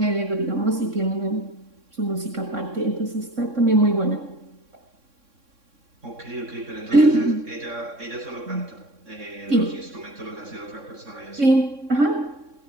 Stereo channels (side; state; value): left; late; 3.6 ms